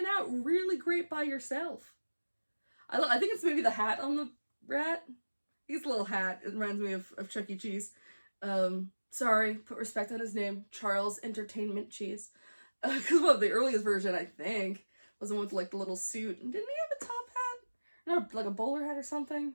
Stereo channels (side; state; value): both; inverted; correlation -1.00